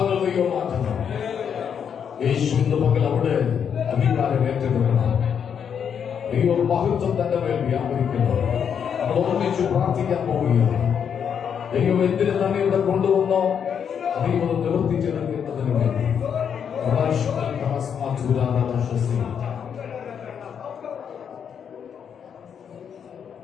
ദൈവം മാറ്റണം. യേശു ഇന്ന് പകൽ അവിടെ അധികാരം ഏറ്റെടുക്കണം. ദൈവം മഹത്വം തന്റെ മേൽ വ്യാപരിക്കുന്നു. നമ്മൾ ഒന്നിച്ച് പ്രാർത്ഥിക്കാൻ പോവുകയാണ്. ദൈവം എന്തിന് തന്നെ ഇവിടെ കൊണ്ടുവന്നോ ദൈവം നിവർത്തിച്ചെടുക്കുന്നതിന് വേണ്ടി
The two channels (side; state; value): right; quieter; 7.7 dB